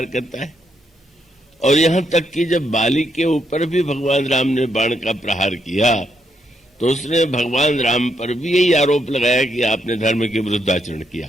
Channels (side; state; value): both; normal; correlation 0.77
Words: करता है। और यहां तक कि जब बाली के ऊपर भी भगवान राम ने बाण का प्रहार किया, तो उसने भगवान राम पर भी यही आरोप लगाया कि आपने धर्म के विरुद्ध आचरण